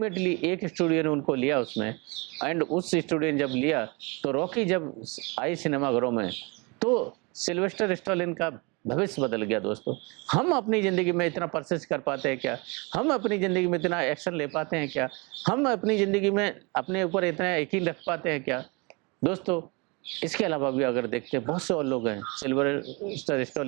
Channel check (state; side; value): quieter; left; 28.9 dB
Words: एक स्टूडियो ने उनको लिया उसमें, एंड उस स्टूडियो ने जब लिया तो रॉकी जब आई सिनेमाघरों में तो सिल्वेस्टर स्टैलोन का भविष्य बदल गया। दोस्तों हम अपनी ज़िंदगी में इतना परसिस्ट कर पाते हैं क्या? हम अपनी ज़िंदगी में इतना एक्शन ले पाते हैं क्या? हम अपनी ज़िंदगी में अपने ऊपर इतना यकीन रख पाते हैं क्या? दोस्तों इसके अलावा भी अगर देखते हैं बहुत से और लोग हैं सिल्वेस्टर